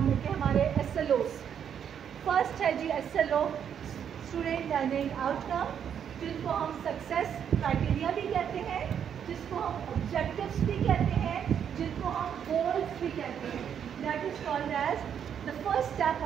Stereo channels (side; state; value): left; quieter; 8.4 dB